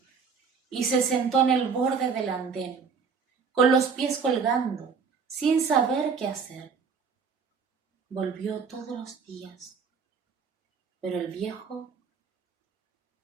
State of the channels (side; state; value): left; quieter; 5.7 dB